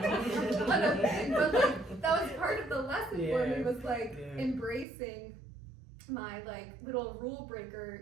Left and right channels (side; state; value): left; drops out; at 4.9 s